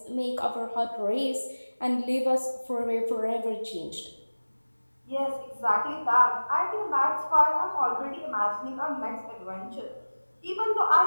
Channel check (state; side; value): inverted; both; correlation -1.00